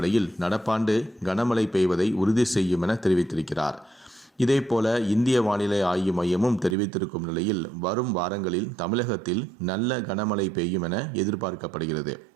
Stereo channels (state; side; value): drops out; left; at 6.8 s